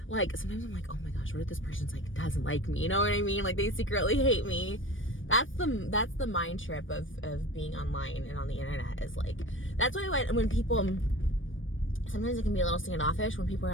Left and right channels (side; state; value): right; late; 0.57 ms